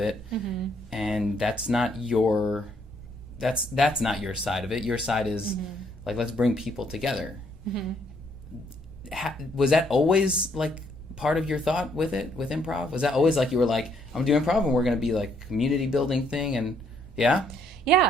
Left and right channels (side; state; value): both; normal; correlation 0.69